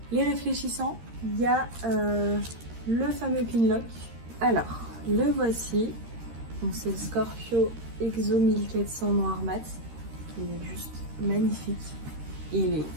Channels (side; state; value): left; late; 13 ms